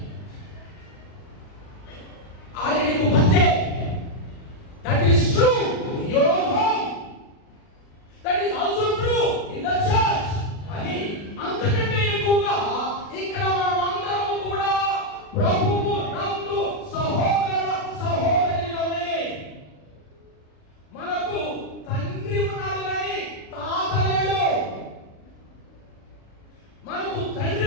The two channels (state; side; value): late; right; 40 ms